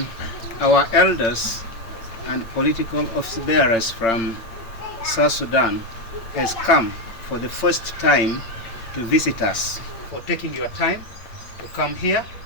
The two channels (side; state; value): right; late; 8.8 ms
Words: our elders and political office bearers from South Sudan has come for the first time to visit us, for taking your time to come here